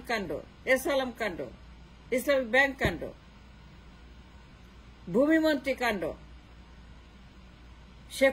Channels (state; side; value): identical; both; correlation 1.00